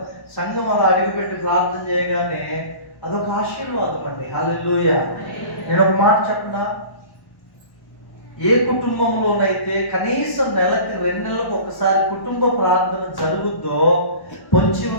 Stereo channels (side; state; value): right; late; 1.1 ms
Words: సంఘం అలా అడిగిపెట్టి ప్రార్థన చేయగానే అదొక ఆశీర్వాదం అండి. హల్లెలూయా. నేను ఒక మాట చెప్పనా, ఏ కుటుంబంలోనైతే కనీసం నెలకి 2 నెలలకు ఒకసారి కుటుంబ ప్రార్థన జరుగుద్దో పొంచి